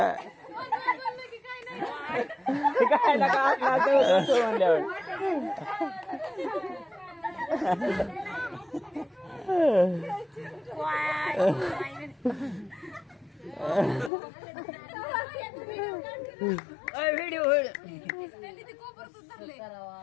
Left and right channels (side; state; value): right; drops out; at 14.1 s